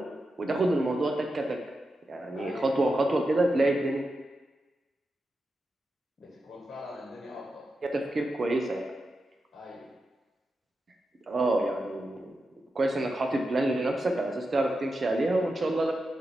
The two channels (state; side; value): normal; both; correlation 0.89